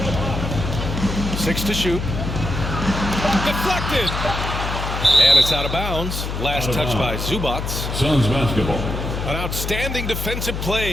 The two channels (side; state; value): left; noise; hum, 4 dB below the sound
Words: 6 to shoot. Deflected. And it's out of bounds. Last touch by Zubac. Suns basketball. An outstanding defensive